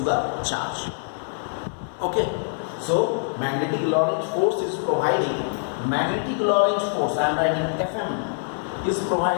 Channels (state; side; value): silent; right; digital silence